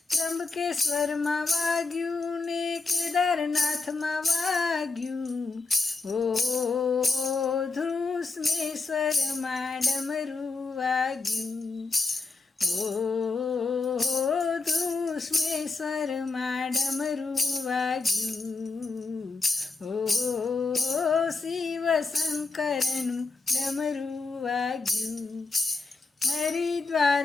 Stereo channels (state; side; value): quieter; right; 4.0 dB